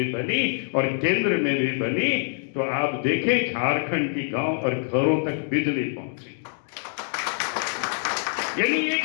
बनी और केंद्र में भी बनी, तो आप देखें झारखंड की गांव और घरों तक बिजली पहुंची। यानी एक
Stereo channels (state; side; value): silent; right; 56 dB below the other